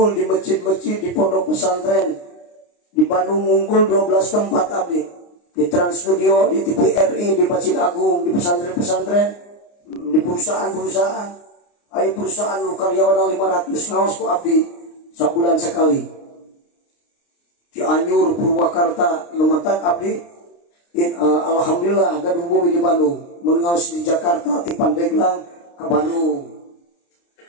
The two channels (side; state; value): right; late; 29 ms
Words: di masjid-masjid di pondok pesantren. Di Bandung ngunggul 12 tempat abdi. Di Trans Studio, di TVRI, di Masjid Agung, di pesantren-pesantren, di perusahaan-perusahaan. Ayo perusahaan lu karyawan 500 ngaos ku abdi sabulan sekali. Cianjur, Purwakarta, lumatak abdi. Alhamdulillah gaduh bumi di Bandung. Mun ngaos di Jakarta ti Pandeglang ke Bandung.